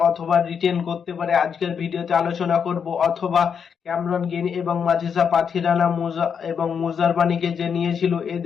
অথবা রিটেন করতে পারে, আজকের ভিডিওতে আলোচনা করব। অথবা ক্যামেরন গ্রিন এবং মাথিসা পাথিরানা এবং মুজারবানিকে যে নিয়েছিল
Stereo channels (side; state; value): right; quieter; 6.9 dB